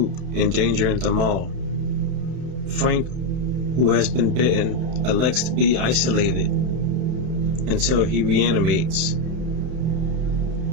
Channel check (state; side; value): late; left; 31 ms